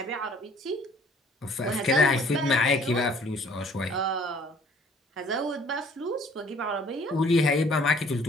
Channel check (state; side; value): normal; both; correlation 0.57